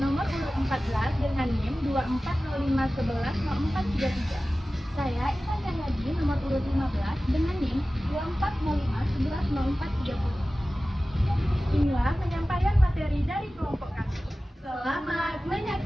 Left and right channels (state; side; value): normal; both; correlation 0.96